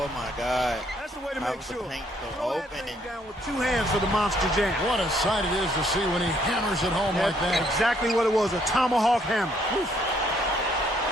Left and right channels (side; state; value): both; normal; correlation 0.68